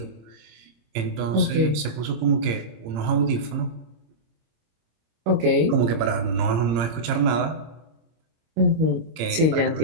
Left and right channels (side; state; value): left; late; 26 ms